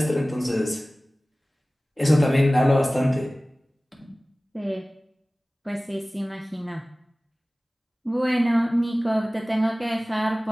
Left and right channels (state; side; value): normal; both; correlation 0.98